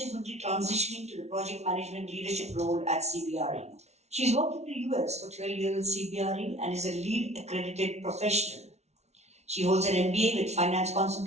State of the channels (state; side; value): late; left; 0.32 ms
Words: transitioning to the project management leadership role at CBRE. She's worked in the US for 12 years at CBRE and is a lead accredited professional. She holds an MBA with finance